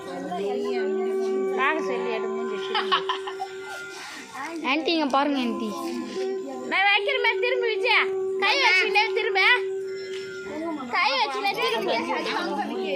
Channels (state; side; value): identical; both; correlation 1.00